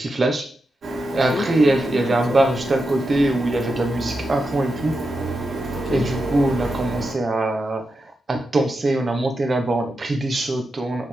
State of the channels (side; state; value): both; normal; correlation 0.88